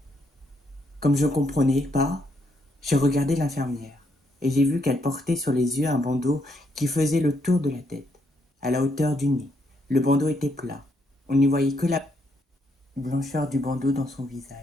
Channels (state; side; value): normal; both; correlation 0.75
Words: ». Comme je ne comprenais pas, j'ai regardé l'infirmière et j'ai vu qu'elle portait sur les yeux un bandeau qui faisait le tour de la tête, à la hauteur du nez. Le bandeau était plat. On n'y voyait que la blancheur du bandeau dans son